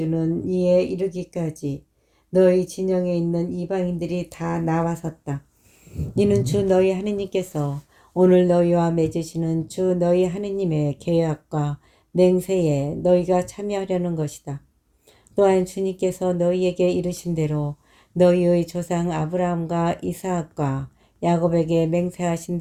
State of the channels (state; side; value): identical; both; correlation 1.00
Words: 이에 이르기까지 너희 진영에 있는 이방인들이 다 나와섰다. 이는 주 너희 하느님께서 오늘 너희와 맺으시는 주 너희 하느님의 계약과 맹세에 너희가 참여하려는 것이다. 또한 주님께서 너희에게 이르신 대로 너희의 조상 아브라함과 이삭과 야곱에게 맹세하신